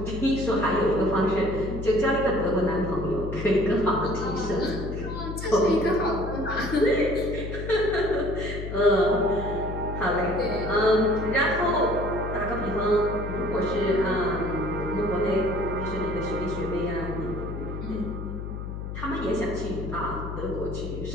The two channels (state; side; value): noise; left; hum, 7 dB below the sound